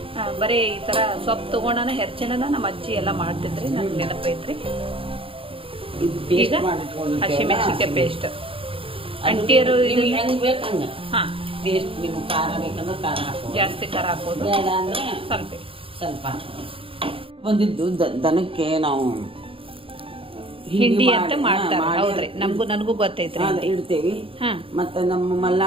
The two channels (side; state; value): left; late; 0.26 ms